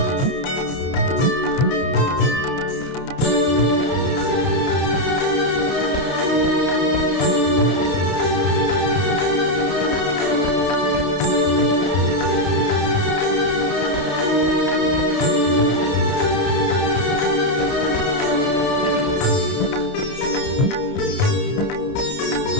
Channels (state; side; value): late; right; 32 ms